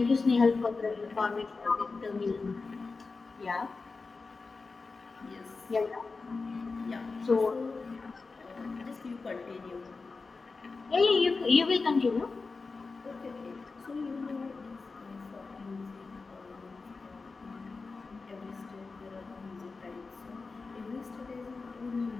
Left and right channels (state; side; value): quieter; right; 4.2 dB